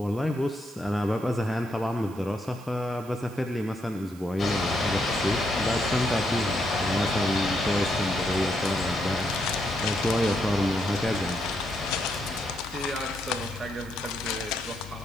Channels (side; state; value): right; noise; hiss, 23 dB below the sound